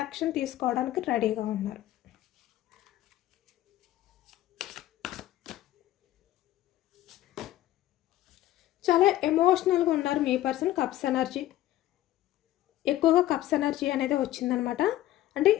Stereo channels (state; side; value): quieter; right; 14.4 dB